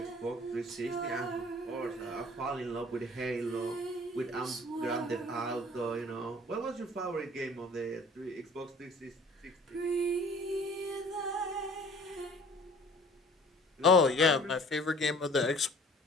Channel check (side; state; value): both; normal; correlation 0.50